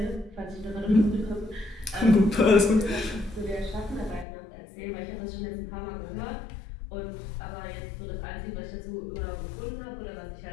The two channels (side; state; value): right; drops out; at 4.2 s